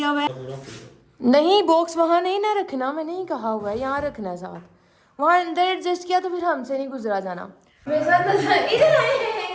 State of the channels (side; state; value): both; identical; correlation 1.00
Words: हुआ है। नहीं, बॉक्स वहाँ नहीं ना रखना, मैंने ही कहा हुआ है यहाँ रखना है साथ। वहाँ अंदर एडजस्ट किया तो फिर हमसे नहीं गुजरा जाना। मेरे साथ इधर आए